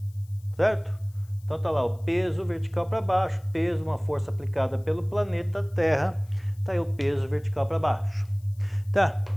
certo? Então tá lá o peso vertical para baixo, peso, uma força aplicada pelo planeta Terra, tá aí o peso vertical para baixo. Tá,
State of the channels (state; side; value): noise; left; hiss, 30 dB below the sound